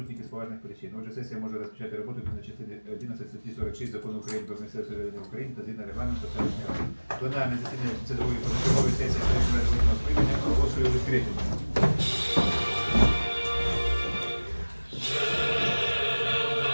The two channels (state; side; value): inverted; both; correlation -1.00